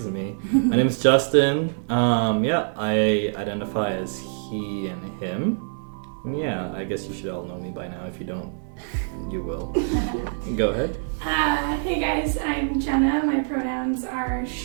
me. My name is Justin. I identify as he and him. Yeah, I guess you should all know me by now. If you don't, you will. Go ahead. Hey guys, I'm Jenna. My pronouns are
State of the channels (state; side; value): silent; left; digital silence